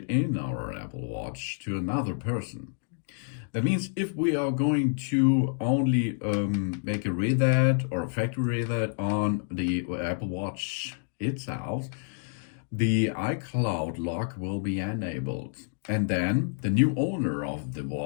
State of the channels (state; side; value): silent; right; digital silence